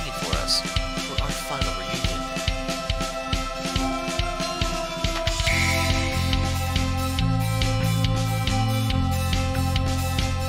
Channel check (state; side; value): identical; both; correlation 1.00